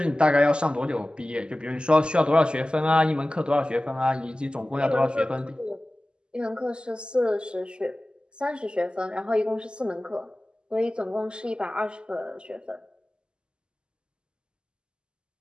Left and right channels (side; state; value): left; late; 0.049 ms